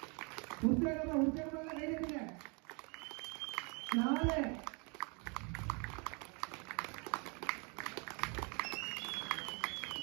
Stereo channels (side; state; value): left; quieter; 33.4 dB